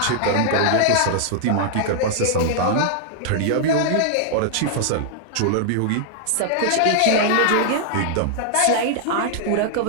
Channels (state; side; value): different; both; correlation -0.01